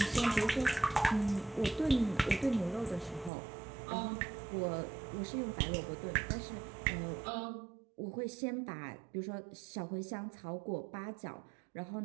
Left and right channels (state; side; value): drops out; left; at 3.3 s